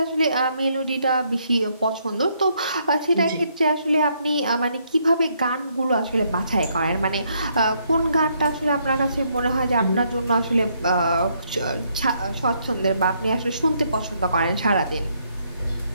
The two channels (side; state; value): both; inverted; correlation -0.72